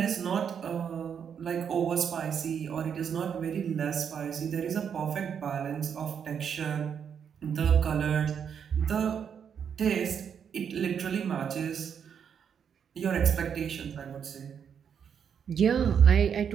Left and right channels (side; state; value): left; quieter; 7.6 dB